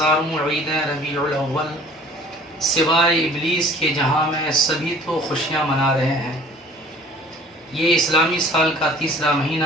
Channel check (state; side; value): normal; both; correlation 0.50